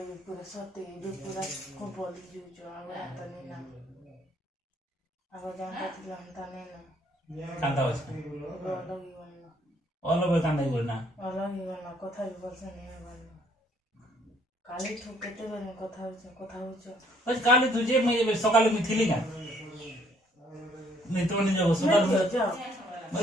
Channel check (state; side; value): normal; both; correlation 0.64